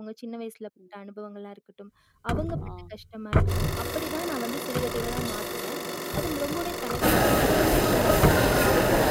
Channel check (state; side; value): identical; both; correlation 1.00